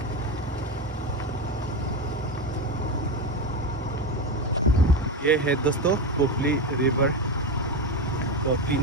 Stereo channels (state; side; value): normal; both; correlation 0.16